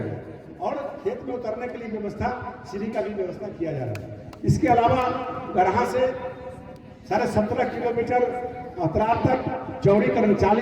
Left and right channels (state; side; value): identical; both; correlation 1.00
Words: और खेत में उतरने के लिए व्यवस्था, सीढ़ी का भी व्यवस्था किया जा रहा है। इसके अलावा गरहा से 17.5 किलोमीटर अतराब तक चौड़ीकरण